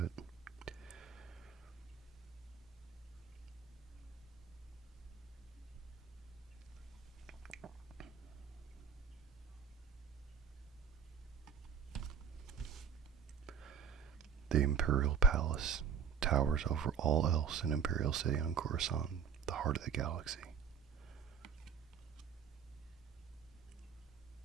The Imperial Palace towers over all else in Imperial City on Coruscant, the heart of the galaxy.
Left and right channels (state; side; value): quieter; left; 7.1 dB